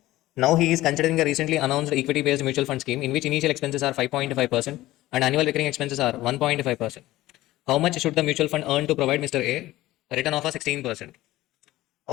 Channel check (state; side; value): quieter; right; 16.6 dB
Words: Now he is considering a recently announced equity-based mutual fund scheme in which initial expenses are 5.5% and annual recurring expenses are 1.5%. How much should the mutual fund earn to provide Mr. A return of a 16%?